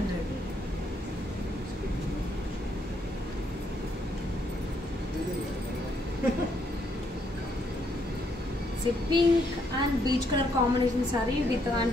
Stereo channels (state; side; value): normal; both; correlation 0.73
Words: Pink and peach colour combination sari with